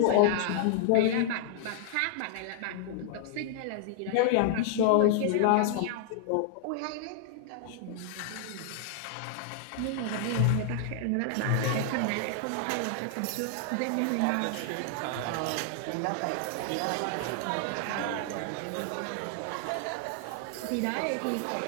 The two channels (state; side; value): different; both; correlation 0.00